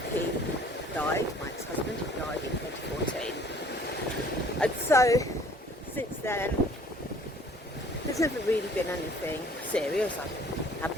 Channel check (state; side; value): normal; both; correlation 0.54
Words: he died, my ex-husband, he died in 2014. And so, since then, there's never really been anything serious. I've had